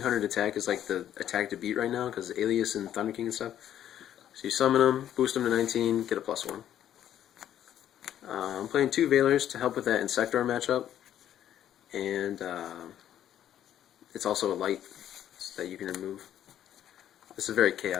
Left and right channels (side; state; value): right; quieter; 10.9 dB